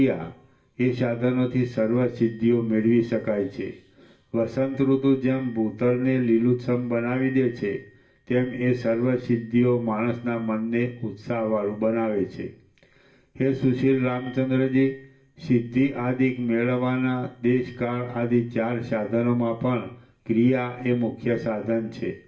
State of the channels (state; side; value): identical; both; correlation 1.00